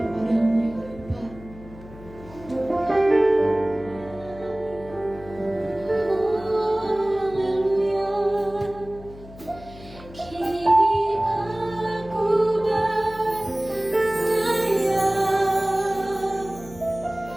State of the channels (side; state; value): left; noise; hum, 18 dB below the sound